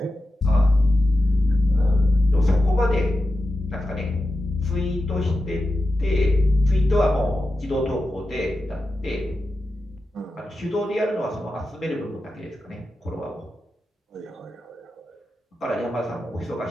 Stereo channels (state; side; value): normal; both; correlation 0.91